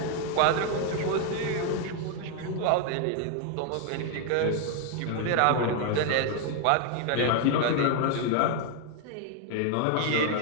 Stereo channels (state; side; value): different; both; correlation 0.01